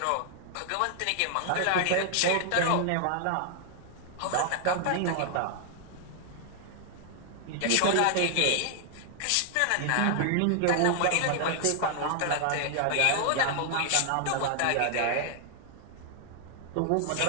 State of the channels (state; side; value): different; both; correlation 0.00